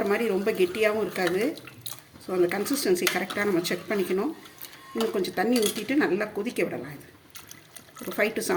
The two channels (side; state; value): both; identical; correlation 1.00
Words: மாதிரி ரொம்ப கெட்டியாகவும் இருக்காது. ஸோ அந்த கன்சிஸ்டன்சி கரெக்டாக நம்ம செக் பண்ணிக்கணும். இன்னும் கொஞ்சம் தண்ணி ஊற்றிட்டு நல்லா கொதிக்க விடலாம். இது ஒரு 5 to